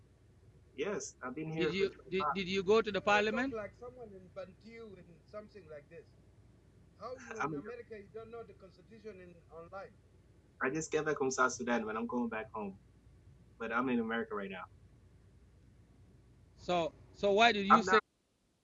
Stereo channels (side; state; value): both; identical; correlation 1.00